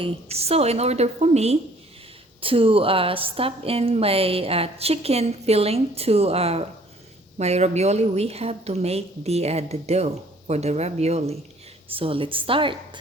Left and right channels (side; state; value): both; normal; correlation 0.57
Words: So in order for me to stuff in my chicken filling to my ravioli, we have to make the dough for the ravioli. So let's start.